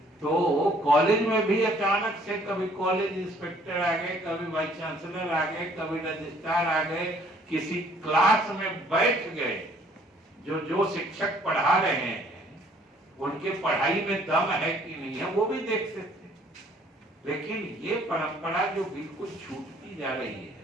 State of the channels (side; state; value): both; normal; correlation 0.60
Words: तो कॉलेज में भी अचानक से कभी कॉलेज इंस्पेक्टर आ गए, कभी वाइस चांसलर आ गए, कभी रजिस्ट्रार आ गए, किसी क्लास में बैठ गए, जो शिक्षक पढ़ा रहे हैं उनके पढ़ाई में दम है कि नहीं है वो भी देखते थे। लेकिन ये परंपरा जो बिल्कुल छूटती जा रही है,